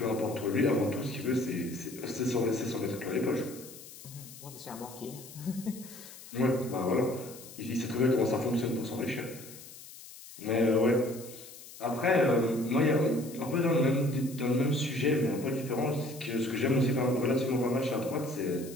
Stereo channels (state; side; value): noise; left; hiss, 17 dB below the sound